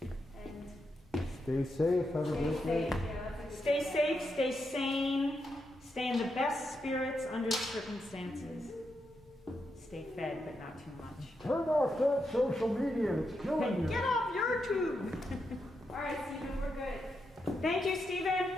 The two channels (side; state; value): both; normal; correlation 0.84